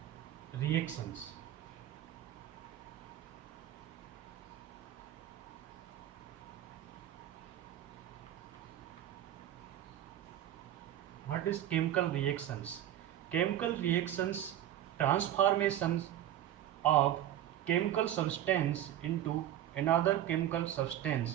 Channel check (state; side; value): quieter; left; 12.0 dB